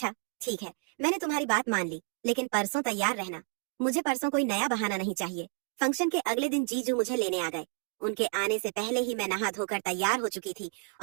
ठीक है, मैंने तुम्हारी बात मान ली, लेकिन परसों तैयार रहना। मुझे परसों कोई नया बहाना नहीं चाहिए। फंक्शन के अगले दिन जीजू मुझे लेने आ गए। उनके आने से पहले ही मैं नहा धोकर तैयार हो चुकी थी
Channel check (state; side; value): quieter; left; 38.8 dB